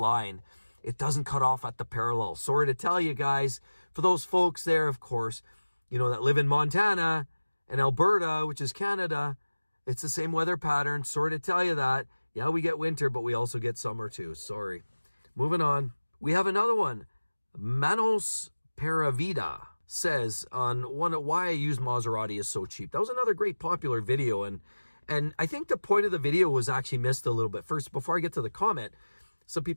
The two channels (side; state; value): both; inverted; correlation -1.00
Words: It doesn't cut off at the parallel. Sorry to tell you guys, for those folks there, of course, you know, that live in Montana and Alberta, which is Canada, it's the same weather pattern. Sorry to tell you that. Yeah, we get winter, but we also get summer too. Sorry. Moving on. We have another one. Manos Paravida says on why I use Maserati is so cheap. That was another great popular video, and I think the point of the video was actually missed a little bit. First, before I get to the comment, some